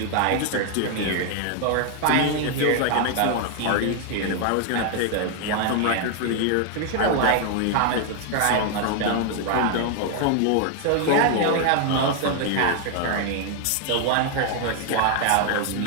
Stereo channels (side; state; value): both; different; correlation 0.00